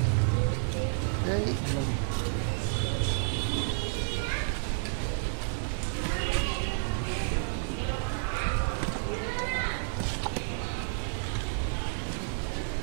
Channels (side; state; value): left; silent; 55 dB below the other